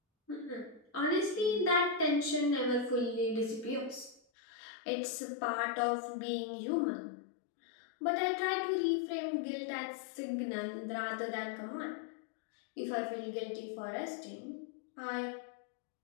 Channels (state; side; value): drops out; right; at 4.2 s